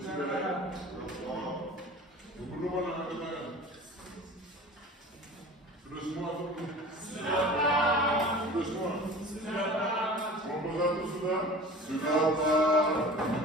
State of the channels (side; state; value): both; normal; correlation 0.39